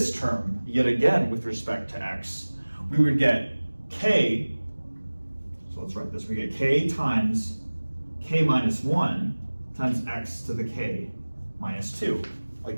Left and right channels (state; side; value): inverted; both; correlation -1.00